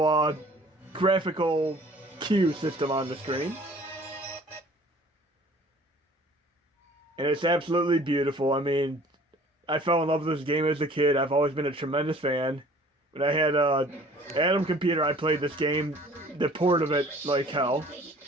graphical cue system on the screen. And it's absolutely beautiful. I mean, I fell in love with this game as a kid. I've always been a tremendous fan. When I had an Atom computer, I played this game, the port of it, like hell.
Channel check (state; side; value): normal; both; correlation 0.51